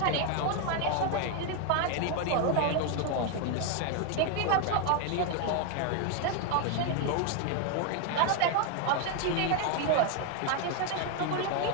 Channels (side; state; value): both; different; correlation 0.01